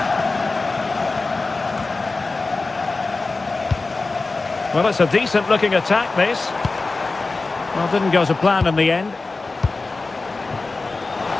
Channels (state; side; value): quieter; right; 3.6 dB